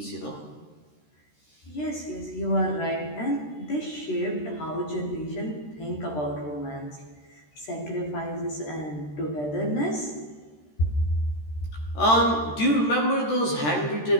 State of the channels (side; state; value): right; late; 13 ms